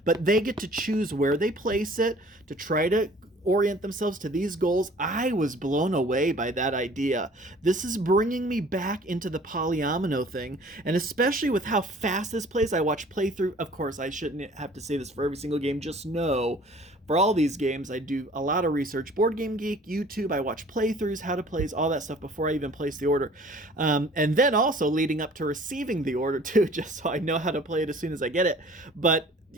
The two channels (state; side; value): normal; both; correlation 0.51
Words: but they get to choose where they place it to try to orient themselves to these goals, I was blown away by that idea. This is bringing me back into the polyomino thing, and especially with how fast this plays. I watch playthrough. Of course, I shouldn't have to say this for every single game. Just know, for all these games, I do a lot of research. Board Game Geek, YouTube, I watch playthroughs, how to plays, all that stuff before I even place the order. And then also leading up to receiving the order too, just so I know how to play it as soon as I get it. But